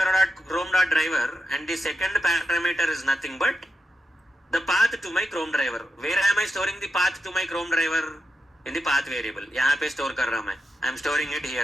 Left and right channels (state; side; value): normal; both; correlation 0.87